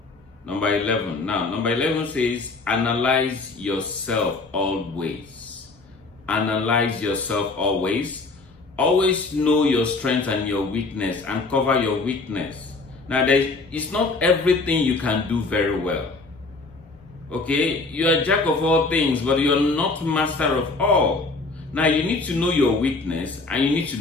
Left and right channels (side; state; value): right; quieter; 3.6 dB